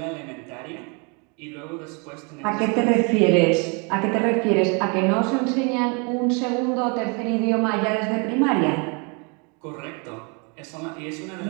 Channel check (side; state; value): left; quieter; 33.3 dB